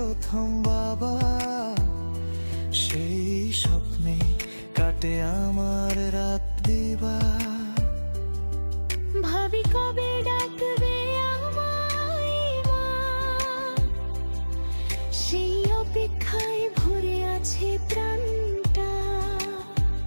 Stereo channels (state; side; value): inverted; both; correlation -1.00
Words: বাবা, সেই স্বপ্নে কাটে আমার রাত দিবা। ভাবি কবে ডাকবে আমায় মা, সেই অপেক্ষায় ভরে আছে প্রাণটা।